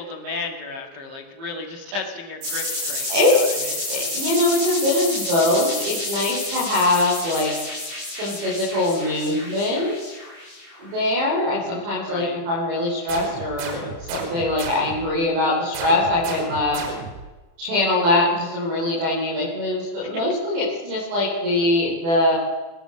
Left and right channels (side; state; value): left; late; 30 ms